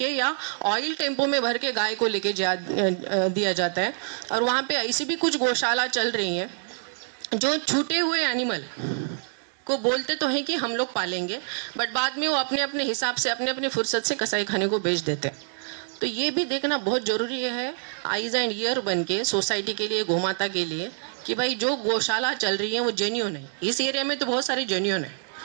या ऑयल टेम्पो में भर के गाय को लेके दिया जाता है। और वहाँ पे ऐसी भी कुछ गौशाला चल रही हैं जो छूटे हुए एनिमल को बोलते तो हैं कि हम लोग पालेंगे, बट बाद में वो अपने अपने हिसाब से, अपने अपने फुर्सत से कसाई खाने को बेच देते हैं। तो ये भी देखना बहुत ज़रूरी है, आइज एंड ईयर बन के सोसाइटी के लिए, गौमाता के लिए, कि भाई जो गौशाला चल रही है वो जेन्युइन है। इस एरिया में तो बहुत सारी जेन्युइन है,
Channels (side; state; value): left; silent; digital silence